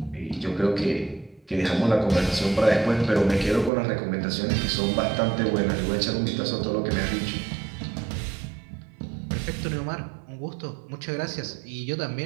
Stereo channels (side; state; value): left; drops out; at 3.7 s